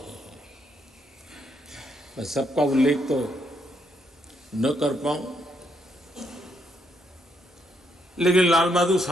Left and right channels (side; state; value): both; normal; correlation 0.75